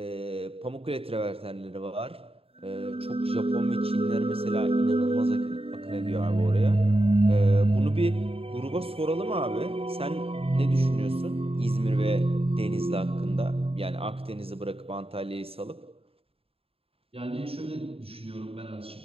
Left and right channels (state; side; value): late; left; 0.28 ms